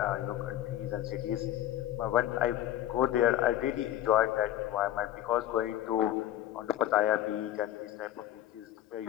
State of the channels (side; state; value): right; quieter; 12.6 dB